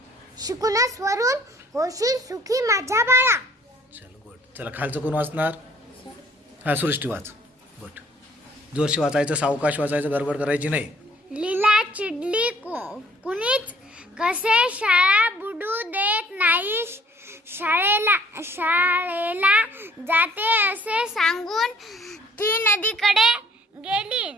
शिकूनच वरून होशील सुखी माझ्या बाळा. चलो गुड. चला खालचं कोण वाचणार? हा सृष्टी वाच. गुड. जोरशी वाचायचं, सावकाश वाचायचं, गडबड करायची नाही. लीला चिडली कुणीच कसे शाळा बुडू देत नाही. शाळेला जाते असे सांगून ती नदीकडे गेली.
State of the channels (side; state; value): both; normal; correlation 0.58